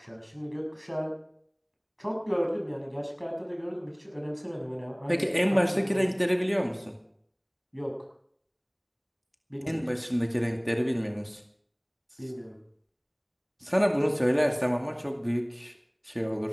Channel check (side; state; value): both; identical; correlation 1.00